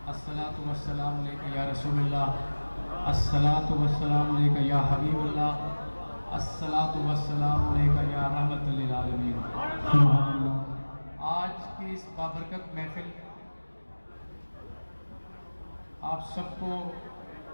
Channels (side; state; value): both; inverted; correlation -1.00